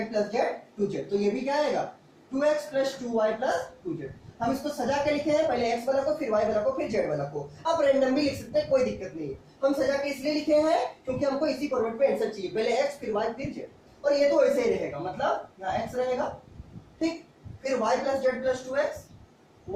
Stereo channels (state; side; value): identical; both; correlation 1.00